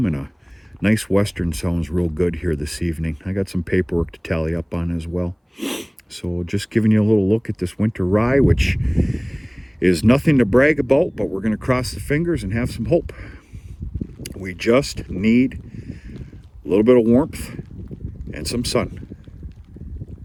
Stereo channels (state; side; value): identical; both; correlation 1.00